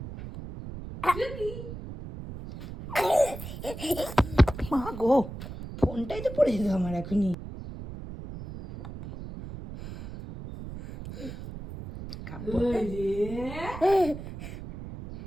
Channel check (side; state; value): right; noise; rumble, 10 dB below the sound